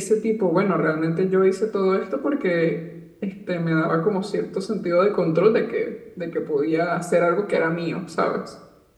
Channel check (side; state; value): both; identical; correlation 1.00